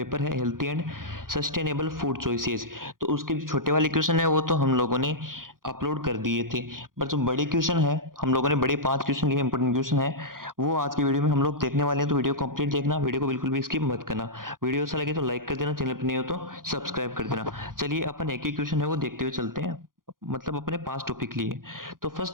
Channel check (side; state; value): left; late; 0.91 ms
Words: है healthy and sustainable food choices. तो उसके जो छोटे वाले क्वेश्चन है वो तो हम लोगों ने अपलोड कर दिए थे, पर जो बड़े क्वेश्चन है हम लोगों ने बड़े 5 क्वेश्चन लिए, इंपॉर्टेंट क्वेश्चन है वो आज की वीडियो में हम लोग देखने वाले हैं। तो वीडियो कंप्लीट देखना, वीडियो को बिल्कुल भी स्किप मत करना। वीडियो अच्छा लगे तो लाइक कर देना, चैनल पर नहीं हो तो सब्सक्राइब कर देना। चलिए अपन एक ही क्वेश्चन है वो देखते हुए चलते हैं, मतलब अपने पास टॉपिक लिए। तो